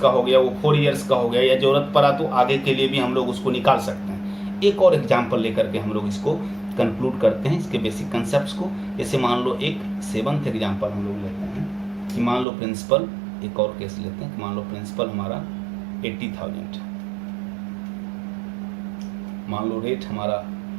हो गया, वो 4 इयर्स का हो गया, या जरूरत पड़ा तो आगे के लिए भी हम लोग उसको निकाल सकते हैं। एक और एग्जाम्पल लेकर के हम लोग इसको कंक्लूड करते हैं, इसके बेसिक कंसेप्ट को। जैसे मान लो एक 7th एग्जाम्पल हम लोग लेते हैं कि मान लो प्रिंसिपल, एक और केस लेते हैं कि मान लो प्रिंसिपल हमारा 80,000 है, मान लो रेट हमारा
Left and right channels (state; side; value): drops out; left; at 12.5 s